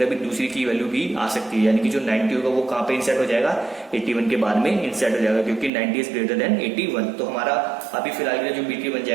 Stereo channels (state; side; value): drops out; left; at 5.7 s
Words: अभी दूसरी की वैल्यू भी आ सकती है, यानी कि जो 90 होगा वो कहां पे इंसर्ट हो जाएगा, 81 के बाद में इंसर्ट हो जाएगा, क्योंकि 90 इज ग्रेटर देन 81। तो हमारा अभी फिलहाल के लिए जो बीटी बन